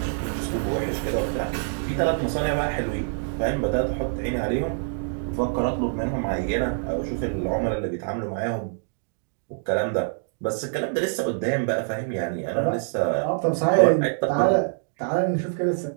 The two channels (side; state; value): left; silent; digital silence